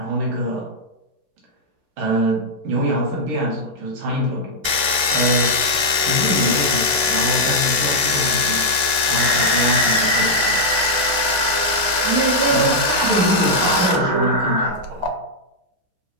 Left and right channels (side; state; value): left; late; 7.4 ms